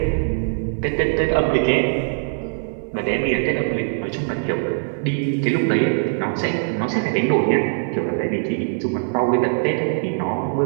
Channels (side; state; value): left; silent; digital silence